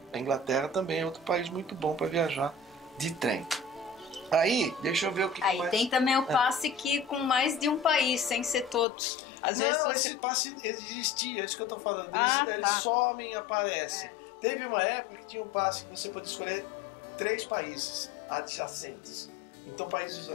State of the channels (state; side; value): drops out; right; at 8.8 s